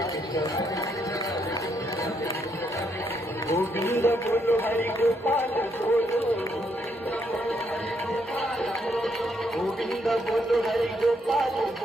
कृष्ण गोविंद बोलो हरि गोपाल बोलो गोविंद बोलो हरि गोपाल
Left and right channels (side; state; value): both; normal; correlation 0.75